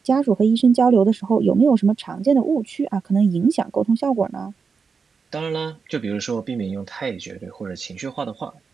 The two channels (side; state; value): left; quieter; 5.4 dB